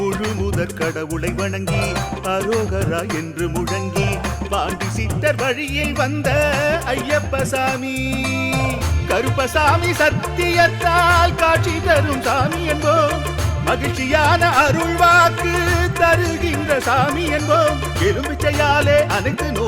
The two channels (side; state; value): both; identical; correlation 1.00